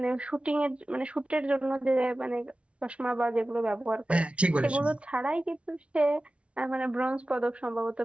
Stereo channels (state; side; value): late; left; 0.061 ms